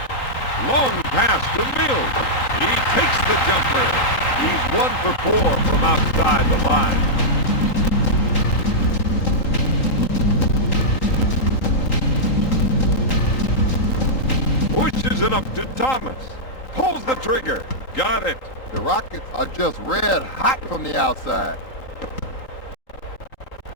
Long pass to Mills. He takes the jumper. He's 1 for 4 from outside the line. Pushes it up to Thomas. Pulls the trigger. Got it. The Rockets are just red hot from the outside.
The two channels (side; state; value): right; late; 3.8 ms